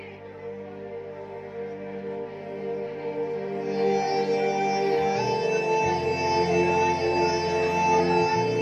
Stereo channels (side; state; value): both; identical; correlation 1.00